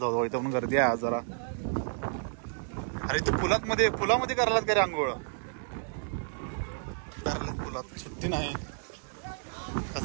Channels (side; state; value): left; silent; 57 dB below the other